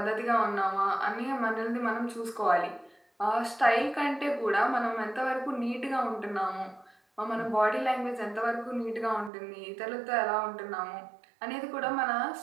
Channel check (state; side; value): drops out; left; at 9.3 s